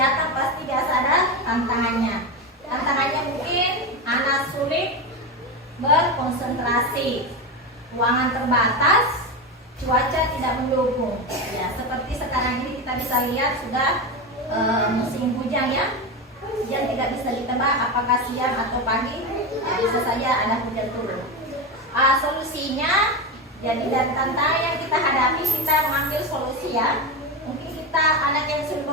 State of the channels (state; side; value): normal; both; correlation 0.17